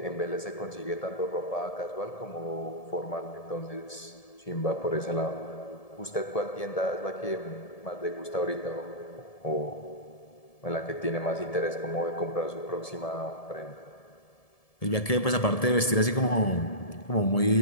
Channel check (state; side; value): late; right; 1.7 ms